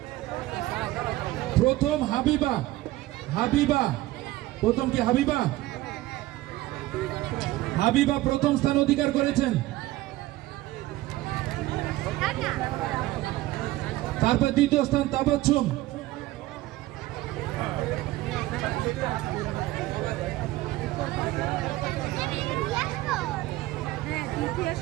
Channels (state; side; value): quieter; left; 17.2 dB